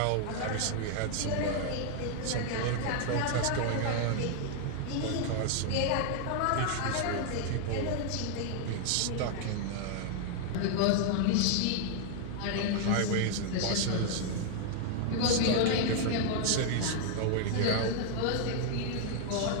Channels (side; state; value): both; different; correlation 0.00